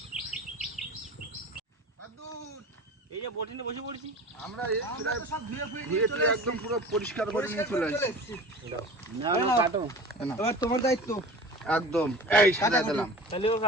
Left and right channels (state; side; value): normal; both; correlation 0.37